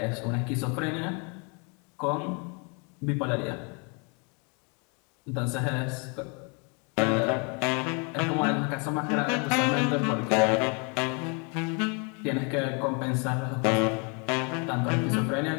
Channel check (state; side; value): quieter; right; 34.3 dB